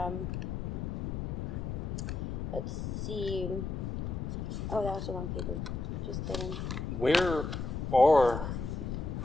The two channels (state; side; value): noise; left; rumble, 3 dB below the sound